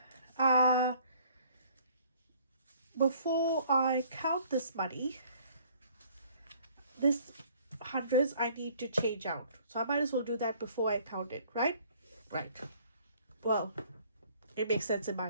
before I count this money, this hundreds I need to change out, so I might as well do that before I count it, right? Well, it makes sense in my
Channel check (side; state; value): both; inverted; correlation -0.57